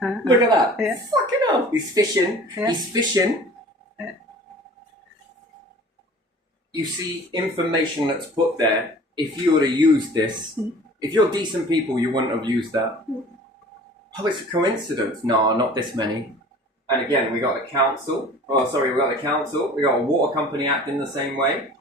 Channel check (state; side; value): normal; both; correlation 0.45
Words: Look at that. Yeah. Fucking hell. He's fishing. Yeah. He's fishing. Yeah. You see information that's put there if you would have used this, if you're decent people, you wouldn't have used that. Oh, it's a coincidence. No, not this many. And again, we got the council. Oh, sorry, we got the council. We got a water company acting the same way.